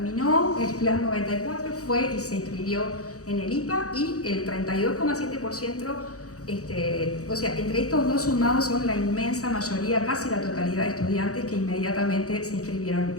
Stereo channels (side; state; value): right; late; 0.66 ms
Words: el Plan 94, fue y se inscribió en el IPA, y el 32,7%, o sea, entre estos dos sumados son la inmensa mayoría, casi la totalidad de estudiantes que inmediatamente se inscribieron